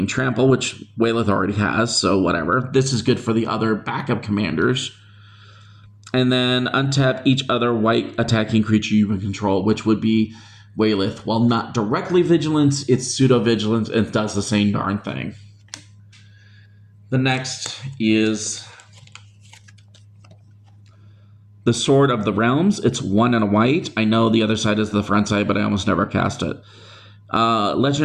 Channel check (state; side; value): identical; both; correlation 1.00